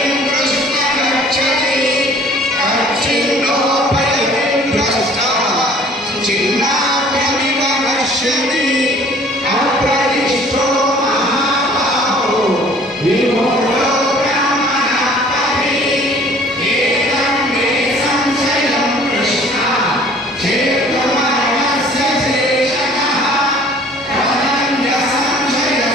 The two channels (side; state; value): both; normal; correlation 0.53